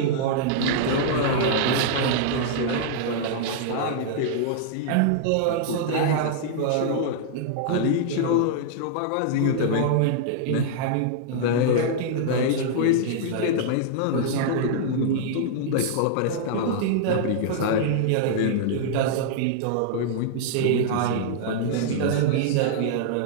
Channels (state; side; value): different; both; correlation -0.01